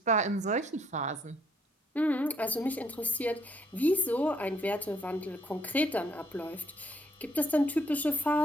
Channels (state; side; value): normal; both; correlation 0.68